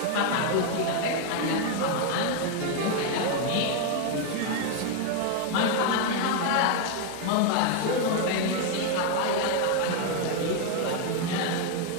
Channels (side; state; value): both; different; correlation 0.01